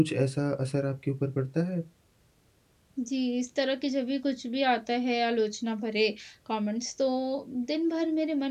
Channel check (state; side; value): identical; both; correlation 1.00